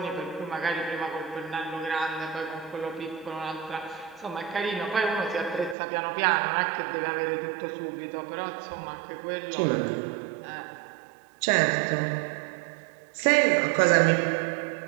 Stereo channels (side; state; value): left; drops out; at 5.8 s